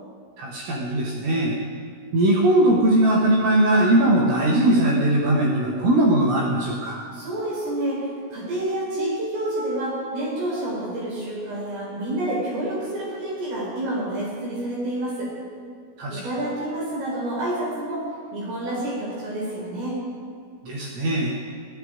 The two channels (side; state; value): left; late; 16 ms